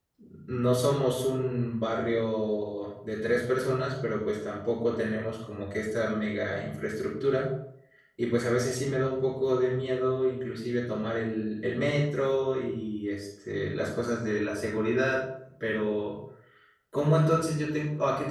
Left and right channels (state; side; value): identical; both; correlation 1.00